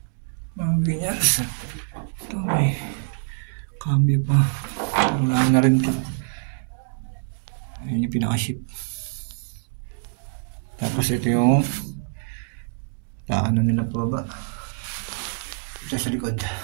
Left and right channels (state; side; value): silent; left; 62 dB below the other